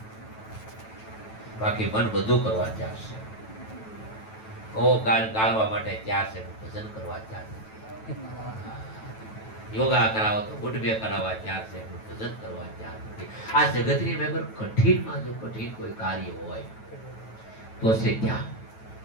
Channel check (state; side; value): late; right; 9.2 ms